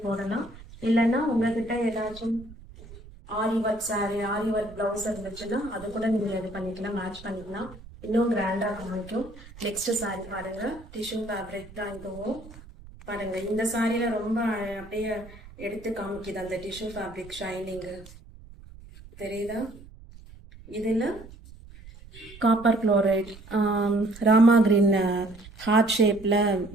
போடலாம். இல்லைன்னா உங்ககிட்ட ஏதாச்சும் ஆரி ஒர்க் சாரி, ஆரி ஒர்க் ப்ளவுஸ் இருந்துச்சுன்னா அது கூட நீங்கள் இது பண்ணிக்கலாம், மேட்ச் பண்ணிக்கலாம், இன்னும் கிராண்டாக காமிக்கும். நெக்ஸ்ட் சாரி பாருங்க, டிஷ்யூ ஃபேப்ரிக் தான் இதுவும். பாருங்க இந்த சாரியில ரொம்ப அப்படியே எடுத்து காமிக்குது அந்த டிஷ்யூ ஃபேப்ரிக் ஷைனிங்கு, தெரியுதா? இதில் copper chloride, Rama green heart ஷேப்பில்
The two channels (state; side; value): noise; right; rumble, 19 dB below the sound